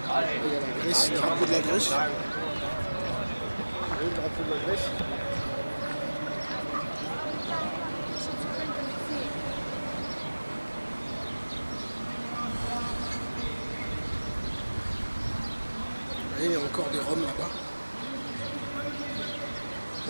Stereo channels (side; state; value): both; inverted; correlation -1.00